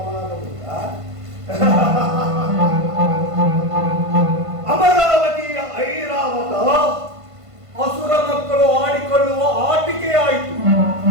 ಅಮರಾವತಿಯ ಐರಾವತ ಅಸುರ ಮಕ್ಕಳು ಆಡಿಕೊಳ್ಳುವ ಆಟಿಕೆಯಾಯಿತು.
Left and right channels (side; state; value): left; late; 1.5 ms